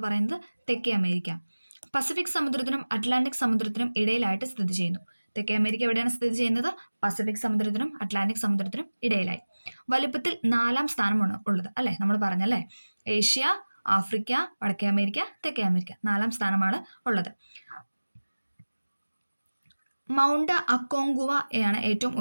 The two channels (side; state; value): both; inverted; correlation -1.00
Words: പറയുന്നത് തെക്കേ അമേരിക്ക. പസഫിക് സമുദ്രത്തിനും അറ്റ്ലാന്റിക് സമുദ്രത്തിനും ഇടയിലായിട്ട് സ്ഥിതി ചെയ്യുന്നു. തെക്കേ അമേരിക്ക എവിടെയാണ് സ്ഥിതി ചെയ്യുന്നത്? പസഫിക് സമുദ്രത്തിനും അറ്റ്ലാന്റിക് സമുദ്രത്തിനും ഇടയിലായി. വലുപ്പത്തിൽ 4-ാം സ്ഥാനമാണ് ഉള്ളത് അല്ലേ? നമ്മൾ പറഞ്ഞല്ലേ, ഏഷ്യ, ആഫ്രിക്ക, വടക്കേ അമേരിക്ക, തെക്കേ അമേരിക്ക. 4-ാം സ്ഥാനമാണ് ഉള്ളത്. മൗണ്ട് അക്കോങ്കുവയാണ് ഏറ്റവും